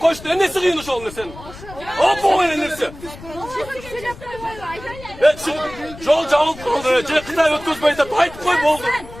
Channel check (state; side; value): noise; left; rumble, 16 dB below the sound